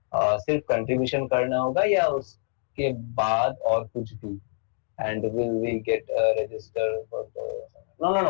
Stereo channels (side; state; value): right; silent; 61 dB below the other